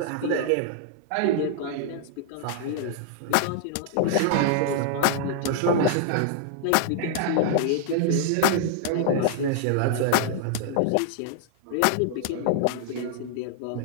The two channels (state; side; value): different; both; correlation -0.01